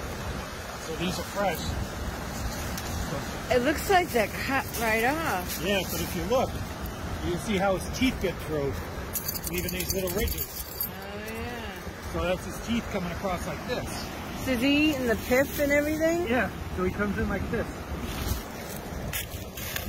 So these are fresh. It looks like they're cut right off. Yeah, but if you look, you can see how his teeth get through, leaving these little ridges. Oh, yeah. So that's his teeth coming across like this. So is he eating the pith and everything? Yeah, so he comes in like this.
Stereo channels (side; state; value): both; identical; correlation 1.00